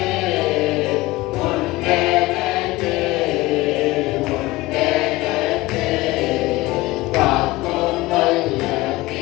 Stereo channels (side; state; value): right; quieter; 19.6 dB